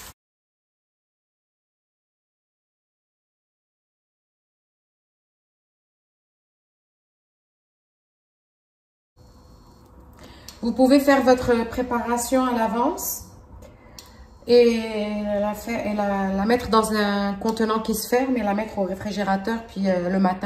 Vous pouvez faire votre préparation à l'avance et la mettre dans un contenant qui se ferme et la mettre au réfrigérateur. Puis le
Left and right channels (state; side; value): identical; both; correlation 1.00